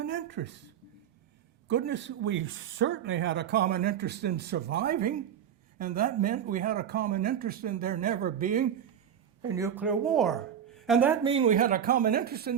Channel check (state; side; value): quieter; left; 9.0 dB